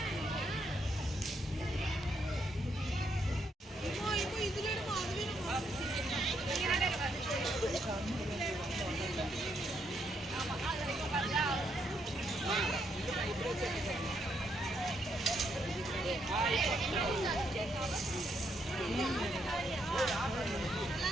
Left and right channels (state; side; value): normal; both; correlation 0.76